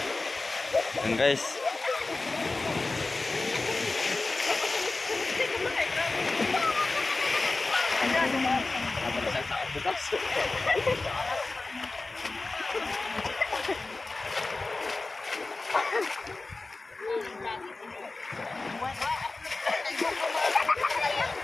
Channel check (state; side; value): quieter; right; 3.4 dB